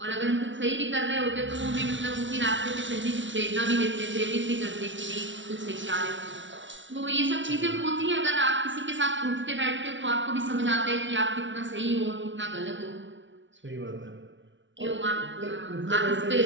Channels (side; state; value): left; late; 0.55 ms